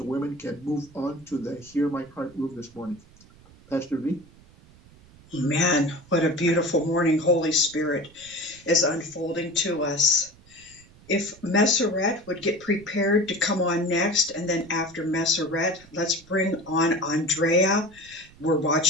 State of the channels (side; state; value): right; noise; rumble, 25 dB below the sound